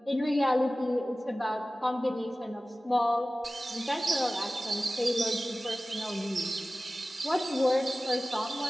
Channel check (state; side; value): normal; both; correlation 0.96